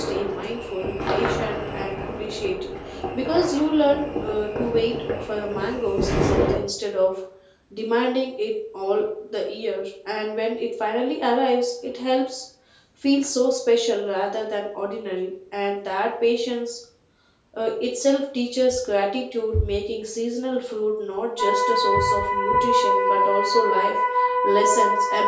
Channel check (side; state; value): both; identical; correlation 1.00